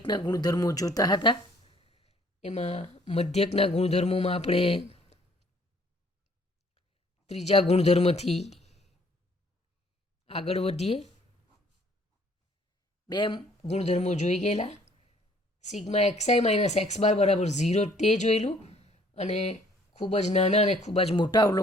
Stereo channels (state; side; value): normal; both; correlation 0.60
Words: ગુણધર્મો જોતા હતા. એમાં મધ્યકના ગુણધર્મોમાં આપણે ત્રીજા ગુણધર્મથી આગળ વધીએ. બે ગુણધર્મો જોઈ ગયેલા. Sigma XI minus x bar બરાબર 0 તે જોયેલું, અને ખૂબ જ નાના અને ખૂબ જ મોટા